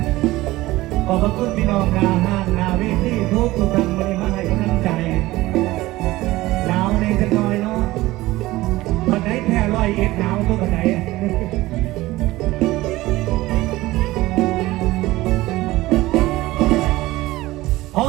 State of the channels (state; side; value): quieter; left; 18.1 dB